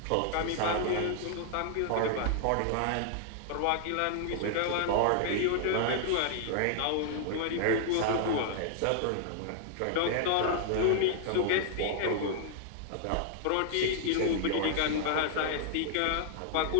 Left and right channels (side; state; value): both; different; correlation -0.01